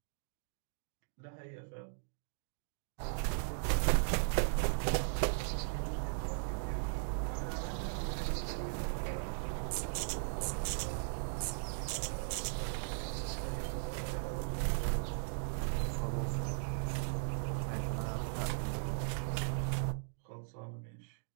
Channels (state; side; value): silent; left; digital silence